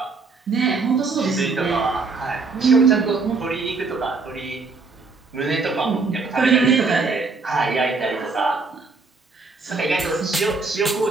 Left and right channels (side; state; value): left; quieter; 4.1 dB